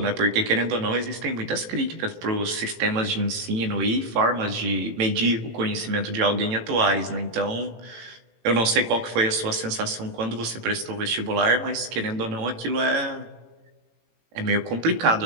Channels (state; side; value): late; left; 18 ms